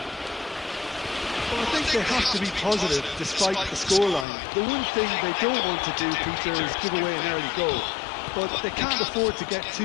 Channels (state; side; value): drops out; right; at 4.2 s